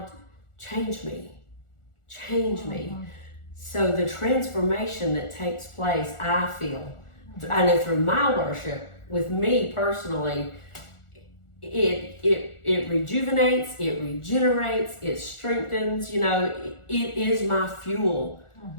change me. Change me. So the transformation that takes place, I know through my worship, with me personally, it rejuvenates, it regenerates, it strengthens, it is my fuel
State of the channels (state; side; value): late; right; 1.4 ms